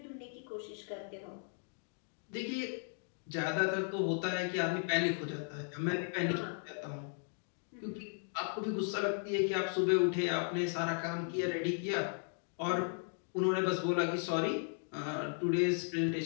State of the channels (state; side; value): silent; right; 54 dB below the other